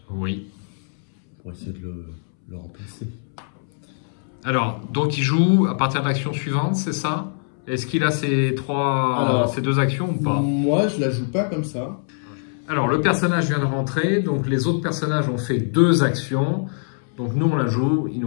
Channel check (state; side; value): silent; right; 64 dB below the other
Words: Oui. Pour essayer de le remplacer. Alors, donc il joue à partir de l'action suivante, c'est ça? Est-ce qu'il a ces deux actions ou pas? Moi, je la joue pas comme ça. Alors, le personnage vient de rentrer, donc les autres personnages ont fait 2 actions. Donc nous, on la joue, il